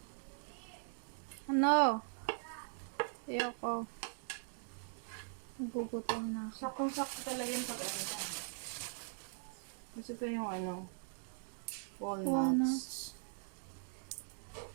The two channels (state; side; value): silent; left; digital silence